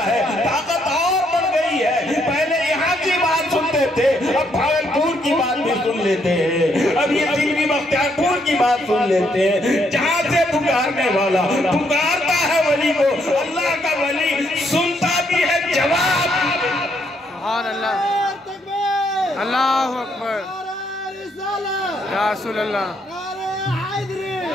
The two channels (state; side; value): normal; both; correlation 0.73